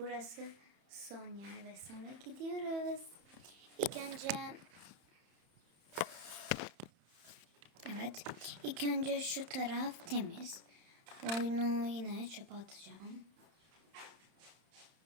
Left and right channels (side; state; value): left; late; 31 ms